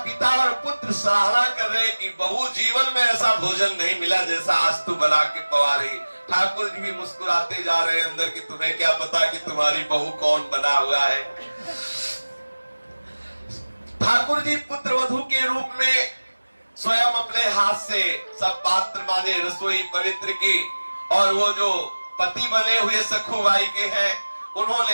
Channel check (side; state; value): both; inverted; correlation -1.00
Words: पिता और पुत्र सराहना कर रहे कि बहू जीवन में ऐसा भोजन नहीं मिला जैसा आज तू बना के पवा रही। ठाकुर जी भी मुस्कुराते जा रहे हैं अंदर कि तुम्हें क्या पता कि तुम्हारी बहू कौन बना हुआ है। ठाकुर जी पुत्र वधू के रूप में स्वयं अपने हाथ से सब पात्र माने, रसोई पवित्र की। और वो जो पति बने हुए सखुबाई के हैं